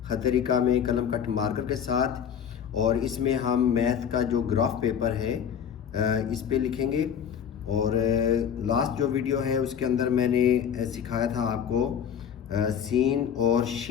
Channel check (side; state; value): right; quieter; 8.3 dB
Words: खतरिका में कलम कट मार्कर के साथ, और इसमें हम मैथ का जो ग्राफ पेपर है इस पे लिखेंगे। और लास्ट जो वीडियो है उसके अंदर मैंने सिखाया था आपको सीन और